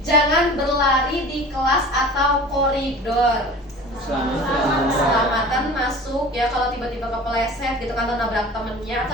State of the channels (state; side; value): normal; both; correlation 0.40